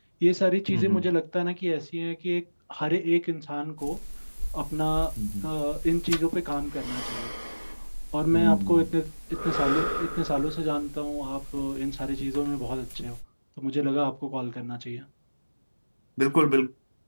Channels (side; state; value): both; inverted; correlation -1.00